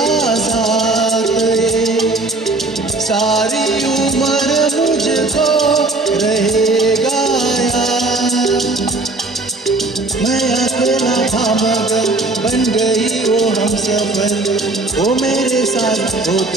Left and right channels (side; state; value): left; quieter; 3.2 dB